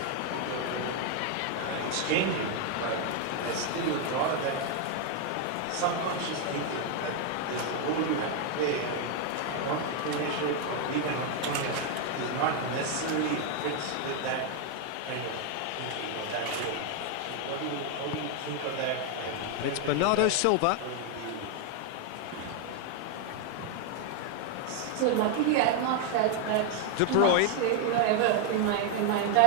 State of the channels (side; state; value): both; different; correlation 0.00